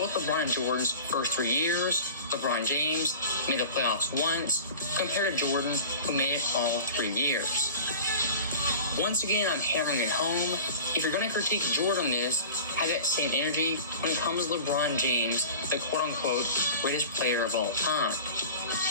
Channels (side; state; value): both; inverted; correlation -0.38